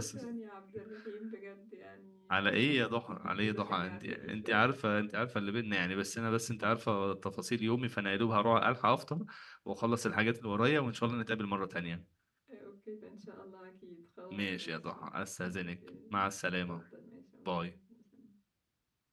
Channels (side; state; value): both; identical; correlation 1.00